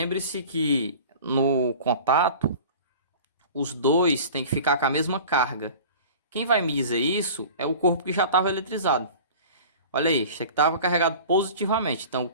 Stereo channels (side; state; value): both; inverted; correlation -0.40